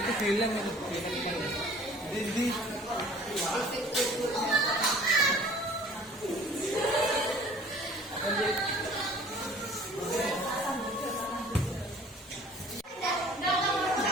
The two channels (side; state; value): both; normal; correlation 0.50